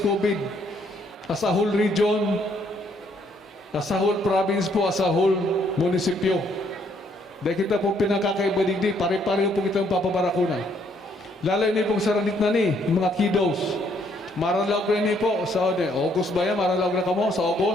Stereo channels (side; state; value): both; normal; correlation 0.68